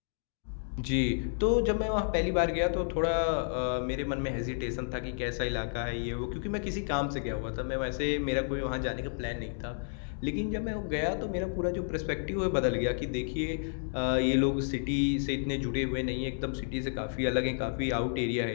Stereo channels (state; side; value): silent; right; digital silence